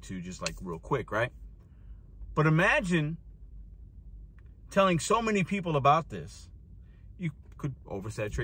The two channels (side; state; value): both; identical; correlation 1.00